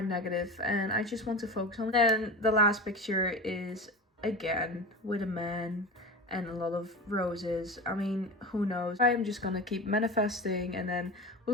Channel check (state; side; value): normal; both; correlation 0.28